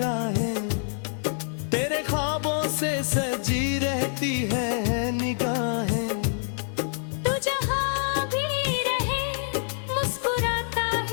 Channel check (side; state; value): right; silent; digital silence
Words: तेरे ख्वाबों से सजी रहती है निगाहें। तू जहाँ भी रहे मुस्कुराता